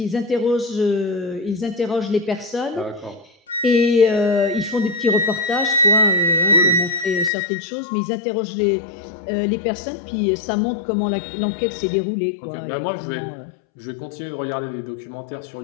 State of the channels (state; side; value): drops out; right; at 7.3 s